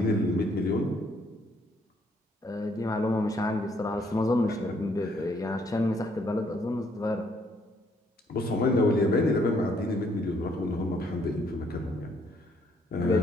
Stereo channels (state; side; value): normal; both; correlation 0.68